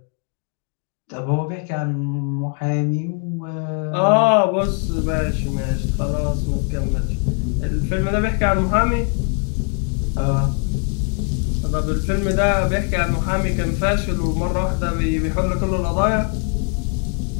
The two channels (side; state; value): right; quieter; 39.5 dB